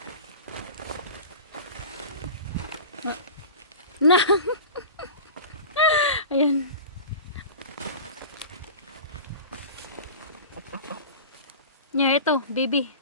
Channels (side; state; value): both; inverted; correlation -0.34